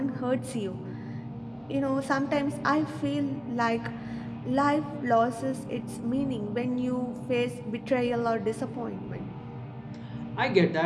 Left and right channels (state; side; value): identical; both; correlation 1.00